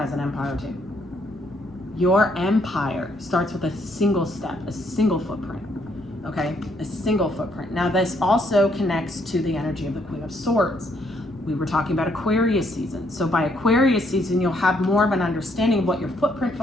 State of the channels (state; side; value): normal; both; correlation 0.71